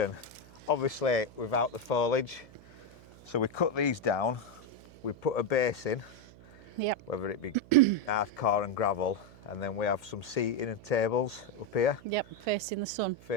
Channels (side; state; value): right; noise; hum, 22 dB below the sound